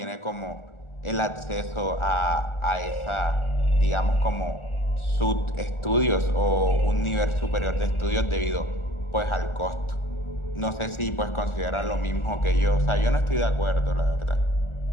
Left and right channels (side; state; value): right; late; 1.4 ms